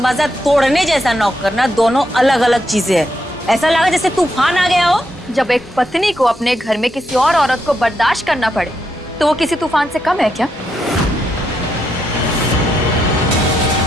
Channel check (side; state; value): both; normal; correlation 0.81